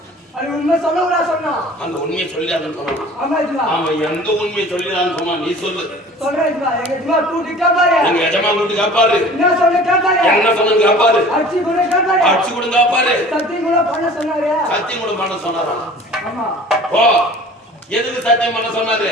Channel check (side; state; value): both; normal; correlation 0.45